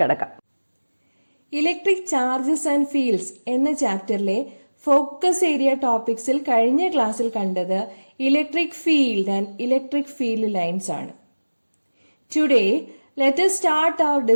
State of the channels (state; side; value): inverted; both; correlation -1.00